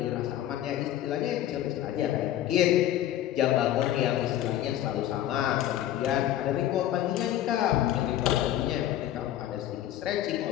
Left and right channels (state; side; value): quieter; right; 12.6 dB